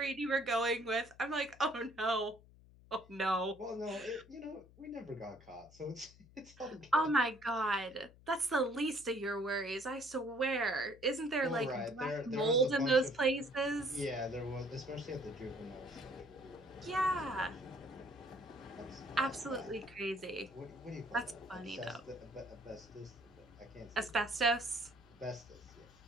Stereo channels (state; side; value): noise; left; hum, 23 dB below the sound